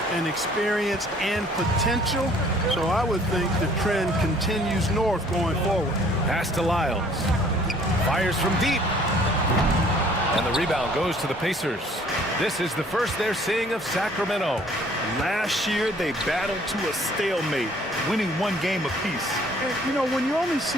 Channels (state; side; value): normal; both; correlation 0.57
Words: and experience and potential. So I would think the trend continues north going forward. Pass to Lyles. Fires from deep. And the rebound goes to the Pacers. This is the first they're seeing of Sacramento. Last year, they battled to a stalemate, winning 1 game apiece. And, you know, when you only